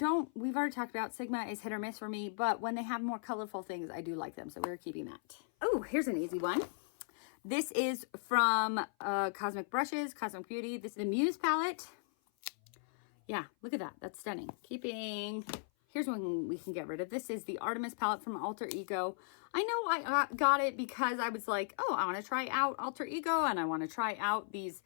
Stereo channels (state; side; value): silent; right; 53 dB below the other